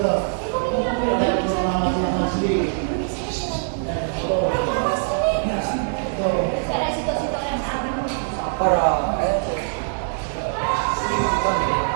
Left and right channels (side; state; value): left; silent; digital silence